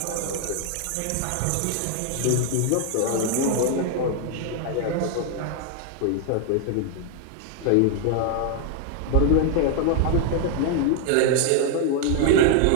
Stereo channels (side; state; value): both; different; correlation 0.00